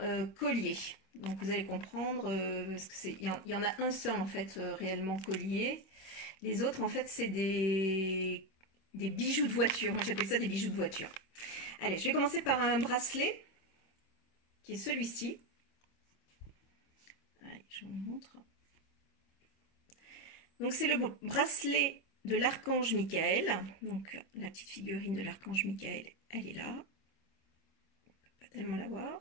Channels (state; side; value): late; right; 25 ms